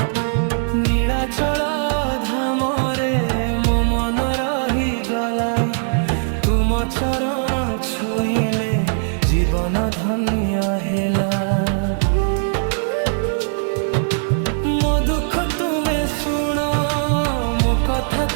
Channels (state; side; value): silent; left; digital silence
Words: नीलाचल धाम रे मो मन रही गला तुम चरण छुईले जीवन धन्य हेला। मो दुख तुमे सुन मो कथा